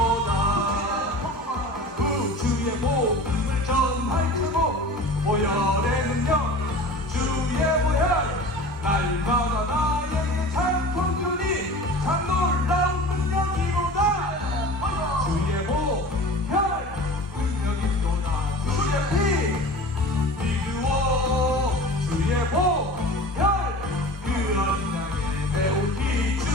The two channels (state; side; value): normal; both; correlation 0.37